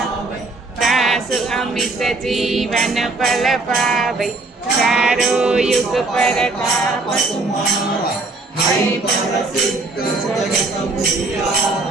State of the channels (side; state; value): left; quieter; 3.3 dB